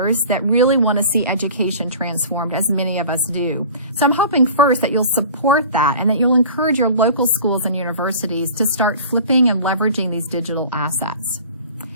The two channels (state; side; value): inverted; both; correlation -0.42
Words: that really want to see education transformed, as many of us do. So I'm hoping first that you'll support that and that you'll encourage your local schools and universities to start flipping and leveraging these digital assets.